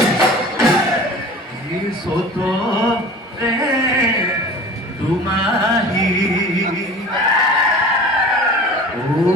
সত রে দুমাহি ও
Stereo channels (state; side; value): normal; both; correlation 0.40